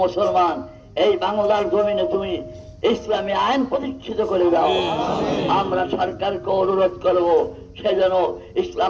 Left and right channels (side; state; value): both; identical; correlation 1.00